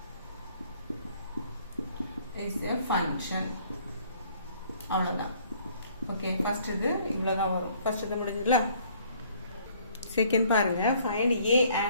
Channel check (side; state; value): both; inverted; correlation -0.60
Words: a function அவ்வளவுதான் ஓகே ஃபர்ஸ்ட் இது இவ்வளவுதான் வரும் ஃபர்ஸ்ட் இது முடிஞ்சதுல செகண்ட் பாருங்க ஃபைண்ட் ஏ